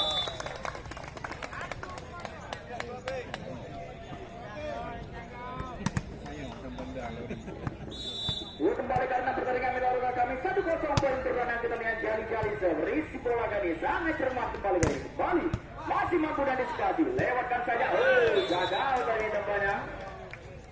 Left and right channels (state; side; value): identical; both; correlation 1.00